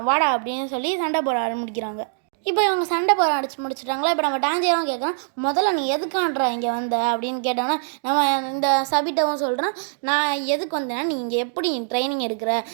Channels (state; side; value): silent; left; digital silence